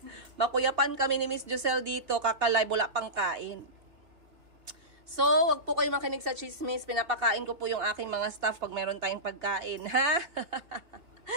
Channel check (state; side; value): late; left; 2.2 ms